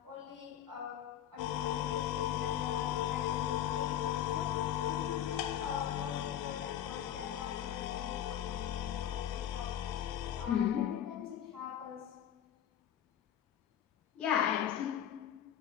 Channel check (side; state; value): right; quieter; 10.5 dB